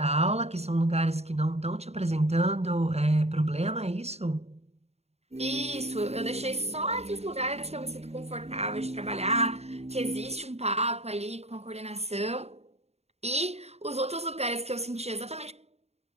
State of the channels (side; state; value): left; late; 0.31 ms